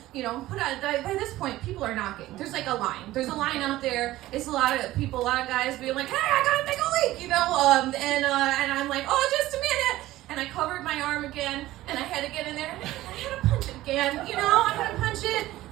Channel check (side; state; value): left; quieter; 16.1 dB